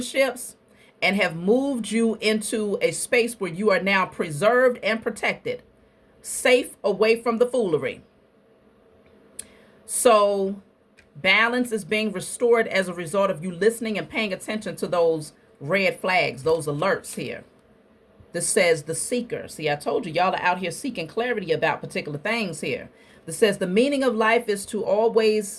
and have moved you into a space where you are now preserved and protected, safe, away from the foolery. So balance is being restored as a result of you listening and paying attention to those red flags, those alerts here. This says the seeker. See, I told you, y'all are out here seeking clarity about particular things here. This says the meaning of life is to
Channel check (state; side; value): identical; both; correlation 1.00